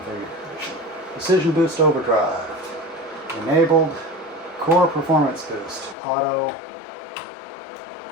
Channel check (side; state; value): right; drops out; at 6.0 s